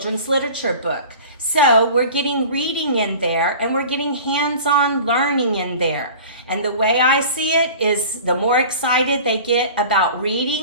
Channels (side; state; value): both; inverted; correlation -0.40